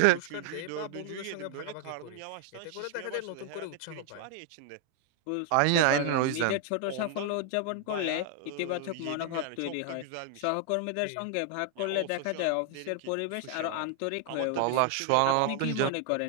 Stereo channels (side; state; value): both; different; correlation 0.00